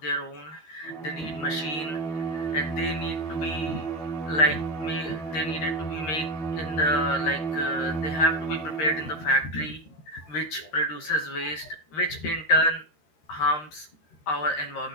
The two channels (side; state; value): right; late; 13 ms